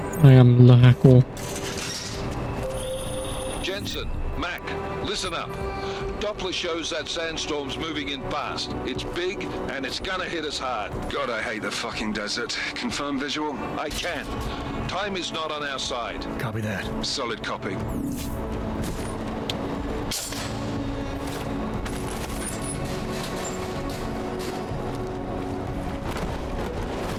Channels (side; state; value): both; identical; correlation 1.00